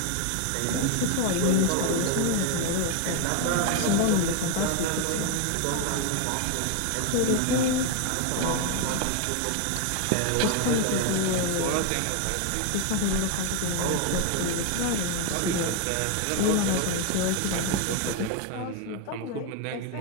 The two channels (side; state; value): both; different; correlation 0.01